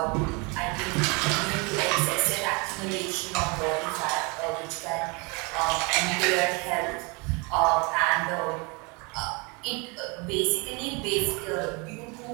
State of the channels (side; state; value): left; quieter; 29.6 dB